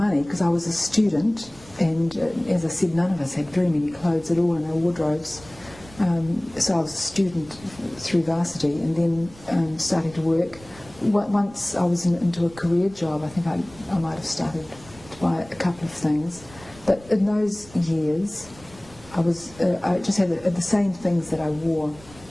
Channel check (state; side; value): noise; right; rumble, 22 dB below the sound